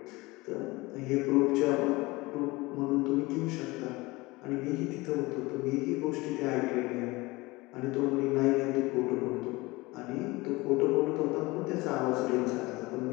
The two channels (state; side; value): quieter; right; 22.2 dB